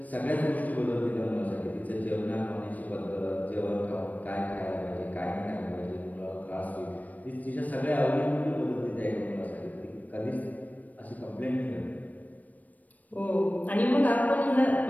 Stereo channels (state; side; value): late; right; 0.075 ms